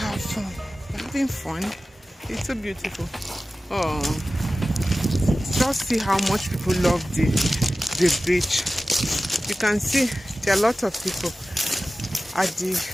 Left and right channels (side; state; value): both; normal; correlation 0.95